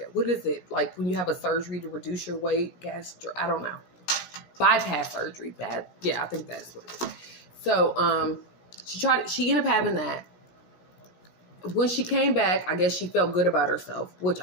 what is it? Like when you have a surgery to reduce your weight, I don't know. Bypass surgery. Yeah, I think that's what it is. So, she ended up having that. when she came back, I guess she felt good about herself, which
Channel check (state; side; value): late; right; 17 ms